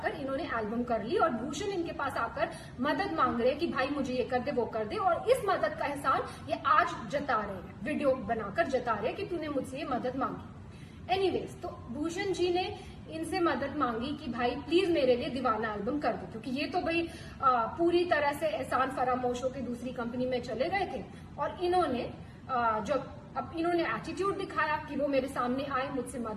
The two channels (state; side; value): identical; both; correlation 1.00